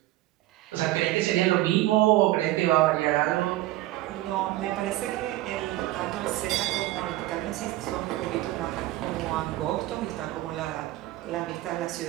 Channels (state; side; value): quieter; left; 16.5 dB